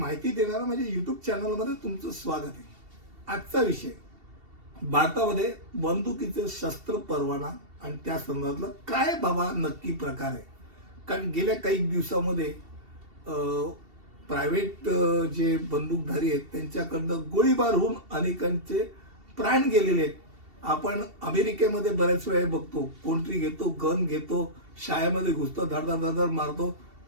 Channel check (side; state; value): left; late; 2.7 ms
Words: देणारा माझ्या यूट्यूब चॅनलमध्ये तुमचं स्वागत आहे. आजचा विषय भारतामध्ये बंदुकीचे शस्त्र परवाना आणि त्या संदर्भातला काय बाबा नक्की प्रकार आहे. कारण गेल्या काही दिवसामध्ये प्रायव्हेट जे बंदूकधारी आहेत त्यांच्याकडनं गोळीबार होऊन अनेकांचे प्राण गेलेले आहेत. आपण अमेरिकेमध्ये बऱ्याच वेळा बघतो, कोणतरी घेतो, गन घेतो, शाळेमध्ये घुसतो, धडधड मारतो,